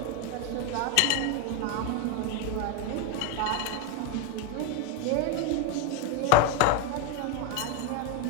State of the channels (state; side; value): different; both; correlation 0.02